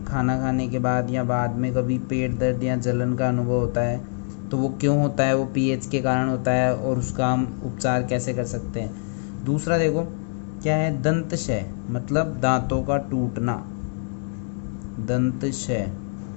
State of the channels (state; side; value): silent; right; digital silence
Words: खाना खाने के बाद या बाद में कभी पेट दर्द या जलन का अनुभव होता है, तो वो क्यों होता है? वो पीएच के कारण होता है, और उसका हम उपचार कैसे कर सकते हैं। दूसरा देखो क्या है, दंतशय मतलब दांतों का टूटना, दंतशय।